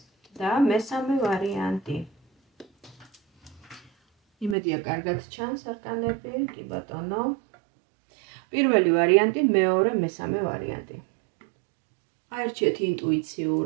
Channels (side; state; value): left; drops out; at 4.5 s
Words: და მესამე ვარიანტი. იმედია კარგად ჩანს არკანები, კი ბატონო. პირველი ვარიანტი, მეორე, მესამე ვარიანტი. აერჩიეთ